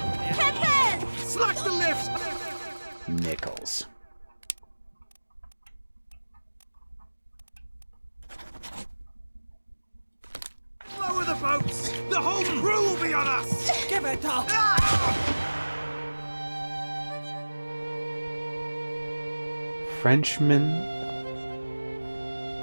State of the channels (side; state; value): both; inverted; correlation -1.00